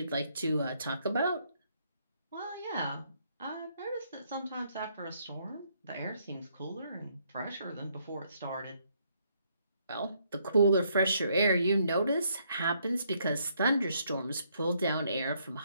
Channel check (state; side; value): inverted; both; correlation -0.71